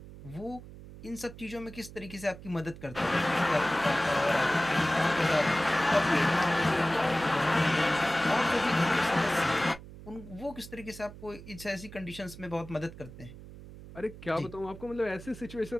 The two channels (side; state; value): right; noise; hum, 16 dB below the sound